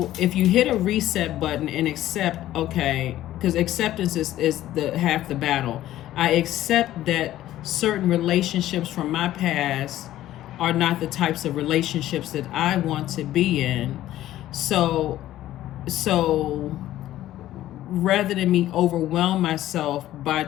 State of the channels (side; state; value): right; quieter; 13.9 dB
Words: if you hit a reset button and accept, okay, because acceptance is the half the battle. I accept that certain relationships from my past are not the types of relationships that I want to be in. So rather than me overwhelm myself by